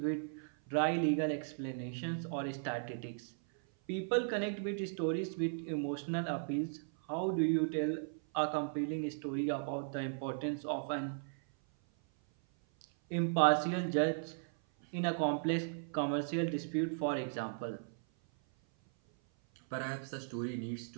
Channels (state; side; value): silent; left; 53 dB below the other